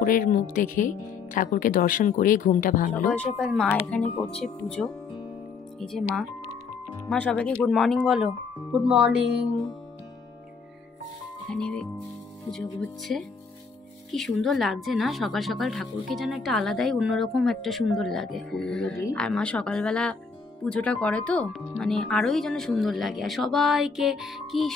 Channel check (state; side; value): quieter; right; 5.1 dB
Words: মুখ দেখে, ঠাকুরকে দর্শন করে ঘুমটা ভাঙলো। সকাল সকাল মা এখানে করছে পুজো। এই যে মা সবাইকে গুড মর্নিং বলো। Good morning. এখানে পুজো হচ্ছে, কি সুন্দর লাগছে না সকাল সকাল, ঠাকুরকে যেন একটা আলাদাই অন্যরকম একটা সুন্দর লাগে। আর মা সকালবেলা পুজোটা করে তো মানে আরোই যেন সুন্দর লাগে। আর সবাইকে কি